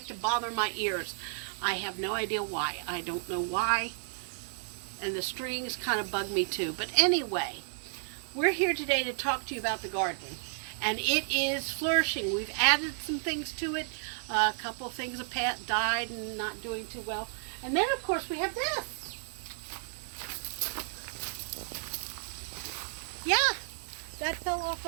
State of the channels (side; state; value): left; silent; 56 dB below the other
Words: to bother my ears. I have no idea why. I don't know why. And the strings kind of bug me too. But anyway, we're here today to talk to you about the garden. And it is flourishing. We've added some things to it. A couple of things have died and not doing too well. And then, of course, we have this. Yeah, that fell off